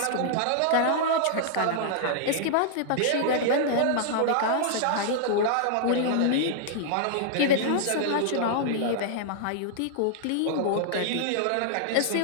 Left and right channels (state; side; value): different; both; correlation -0.01